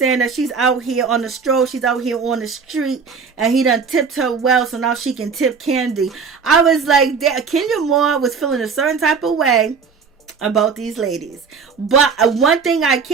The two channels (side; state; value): left; quieter; 5.6 dB